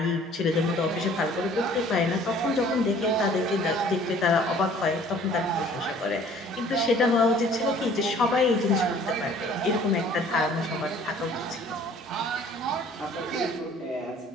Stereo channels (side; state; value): both; normal; correlation 0.53